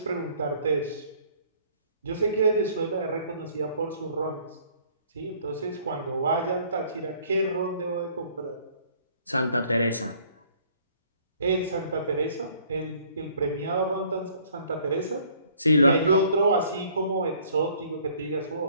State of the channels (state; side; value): inverted; both; correlation -0.58